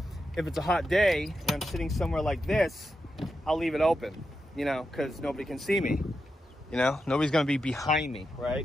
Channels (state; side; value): normal; both; correlation 0.87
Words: if it's a hot day and I'm sitting somewhere like this, I'll leave it open, you know, because nobody can see me. You know, nobody's gonna be behind me,